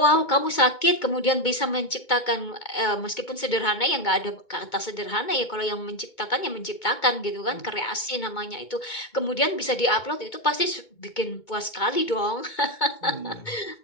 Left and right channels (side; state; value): right; late; 2.2 ms